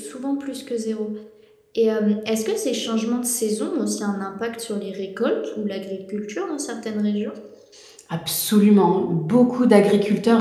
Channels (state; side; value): identical; both; correlation 1.00